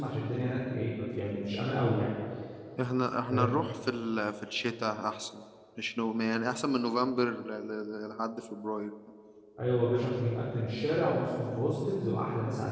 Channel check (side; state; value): both; identical; correlation 1.00